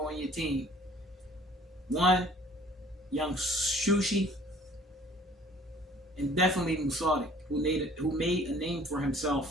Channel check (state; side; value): normal; both; correlation 0.53